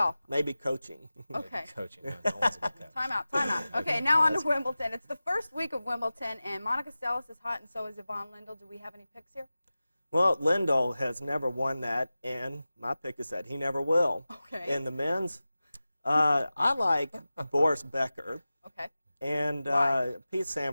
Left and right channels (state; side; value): inverted; both; correlation -0.96